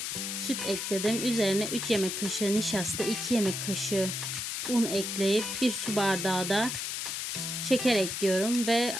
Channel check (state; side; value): noise; left; hiss, 3 dB below the sound